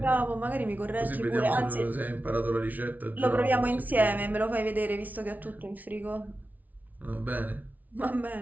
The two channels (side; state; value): left; late; 0.076 ms